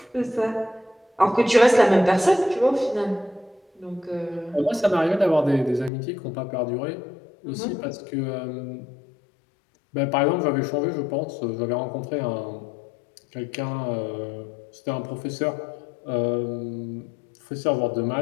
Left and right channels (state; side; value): drops out; right; at 5.9 s